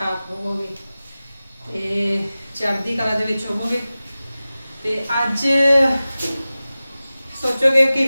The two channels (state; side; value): inverted; both; correlation -0.96